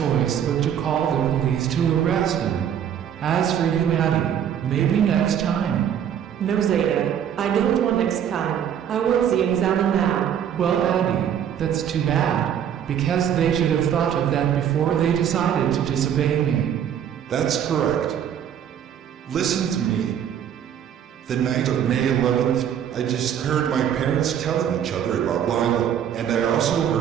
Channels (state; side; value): quieter; left; 9.2 dB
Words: but to call the police to arrest him. As for you, Addy, maybe next time. No, Zeta, I don't want next time. I want Z and Zana now. Well, Addy, that's too bad, because they should have thought of that before they decided to disobey me. That's correct. Listen to me. The night of May 11th, I just heard my parents telling each other about Lyla, and I also